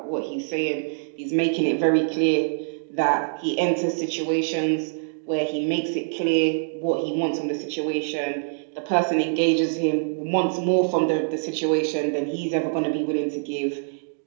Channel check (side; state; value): left; silent; digital silence